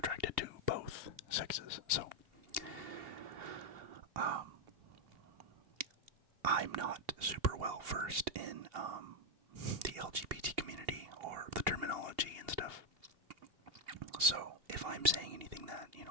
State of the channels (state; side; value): late; left; 2.8 ms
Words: to both sexes. So, I'm not super well versed in, the LGBT community, or the terminology and stuff. So, if I'm saying anything that,